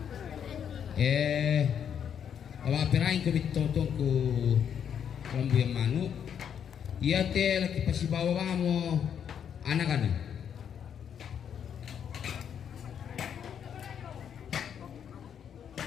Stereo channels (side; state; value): right; quieter; 8.3 dB